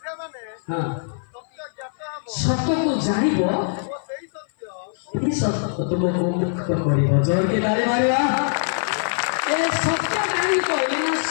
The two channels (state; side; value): silent; right; 57 dB below the other